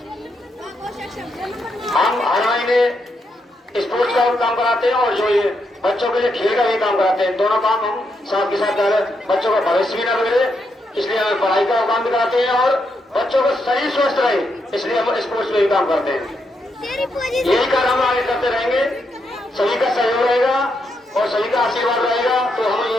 हम हर महीने स्पोर्ट्स का काम कराते हैं और जो ये बच्चों के लिए खेल का भी काम कराते हैं। दोनों काम हम साथ के साथ कर रहे हैं। बच्चों का भविष्य भी न बिगड़े इसलिए हम पढ़ाई का काम भी कराते हैं और बच्चों का शरीर स्वस्थ रहे इसलिए हम स्पोर्ट्स में भी काम करते हैं। यही कार्य हम आगे करते रहेंगे। सभी का सहयोग रहेगा और सभी का आशीर्वाद रहेगा तो हम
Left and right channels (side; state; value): both; normal; correlation 0.81